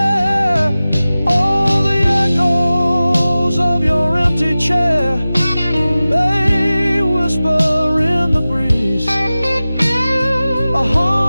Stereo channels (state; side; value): inverted; both; correlation -0.96